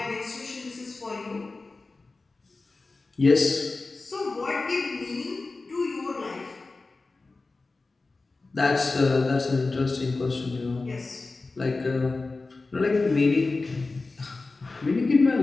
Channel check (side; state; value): right; quieter; 3.6 dB